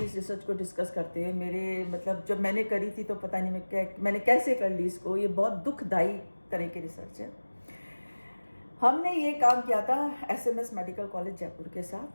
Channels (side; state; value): both; inverted; correlation -1.00